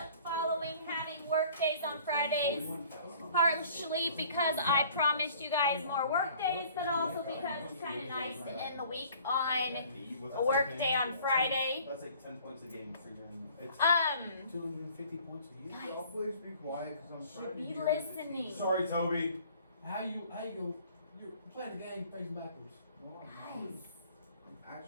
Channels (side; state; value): both; inverted; correlation -0.52